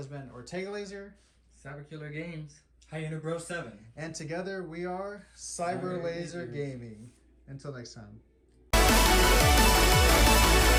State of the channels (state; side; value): identical; both; correlation 1.00